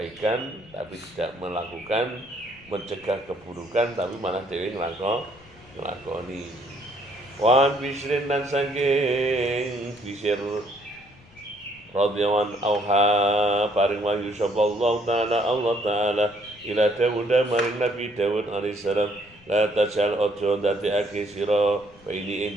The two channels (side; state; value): left; noise; rumble, 27 dB below the sound